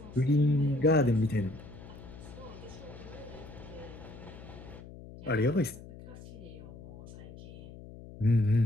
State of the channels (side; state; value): left; noise; hum, 16 dB below the sound